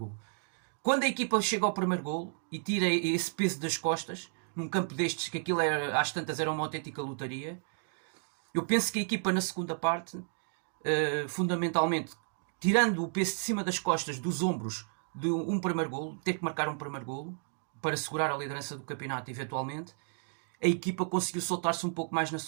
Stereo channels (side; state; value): left; silent; 56 dB below the other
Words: Quando a equipa chega ao primeiro golo e tira esse peso das costas, num campo destes, que aquilo era, às tantas era uma autêntica lotaria, eu penso que a equipa na segunda parte, fundamentalmente, tirando o peso de cima das costas, dos ombros, de um primeiro golo, ter que marcar um primeiro golo para segurar a liderança do campeonato eventualmente, a equipa conseguiu soltar-se um pouco mais na